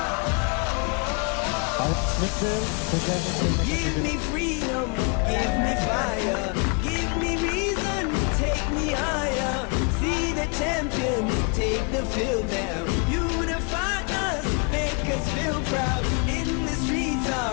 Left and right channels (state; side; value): quieter; right; 34.0 dB